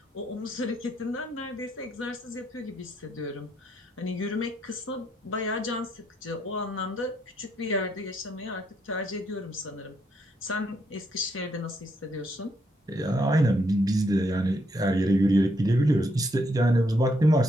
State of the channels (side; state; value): both; normal; correlation 0.75